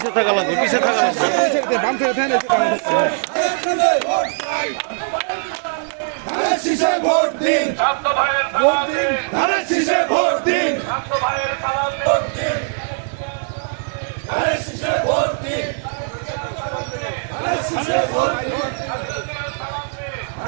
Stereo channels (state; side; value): silent; left; digital silence